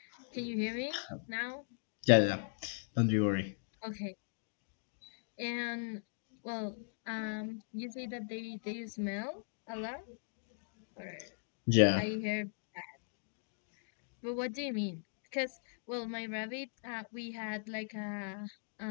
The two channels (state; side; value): silent; right; digital silence